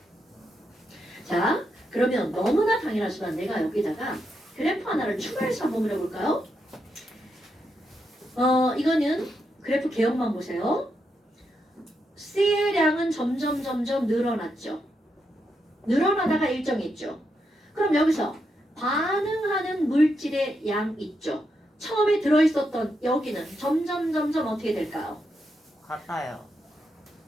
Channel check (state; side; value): normal; both; correlation 0.83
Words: 자 그러면 너무나 당연하지만 내가 여기다가 그래프 하나를 추가해서 한번 그려볼까요? 이거는 그래프 개혁만 보세요. C의 량은 점점 늘어났죠. 늘어나다가 일정이 있죠. 그럼 여기서 반응하는 물질의 양 있죠. 처음에 들어있었던 여기는 점점 어떻게 될까요? 같아요.